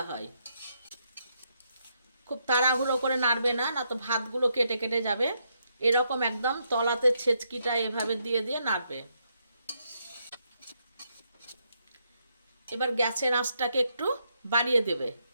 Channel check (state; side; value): inverted; both; correlation -0.78